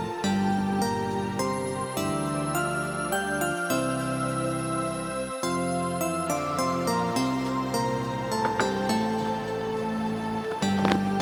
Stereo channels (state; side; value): identical; both; correlation 1.00